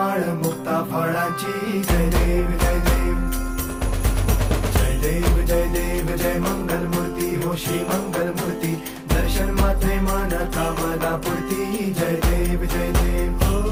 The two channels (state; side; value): identical; both; correlation 1.00